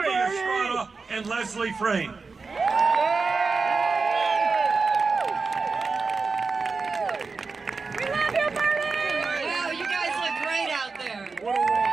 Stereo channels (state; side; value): quieter; left; 4.4 dB